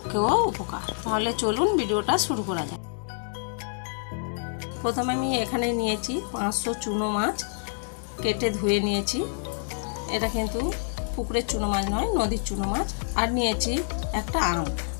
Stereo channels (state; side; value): silent; right; 60 dB below the other